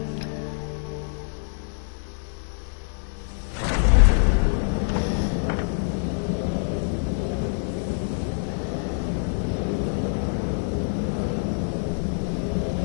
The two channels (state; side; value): silent; right; 61 dB below the other